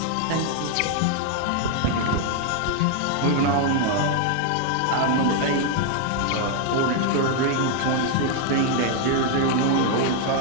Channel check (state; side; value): different; both; correlation 0.00